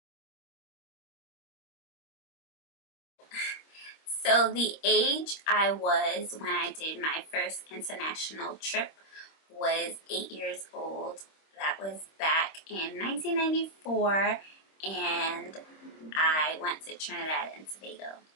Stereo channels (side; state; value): right; late; 26 ms